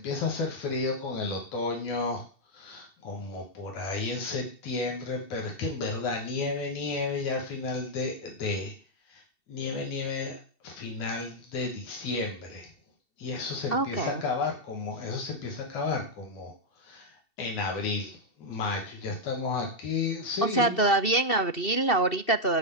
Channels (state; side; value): late; right; 2.7 ms